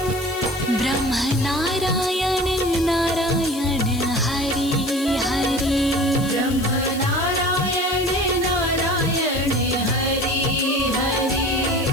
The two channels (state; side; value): noise; left; hiss, 14 dB below the sound